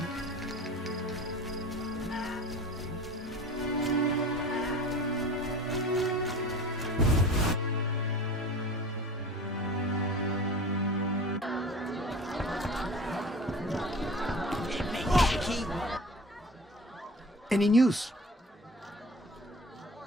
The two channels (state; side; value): normal; both; correlation 0.39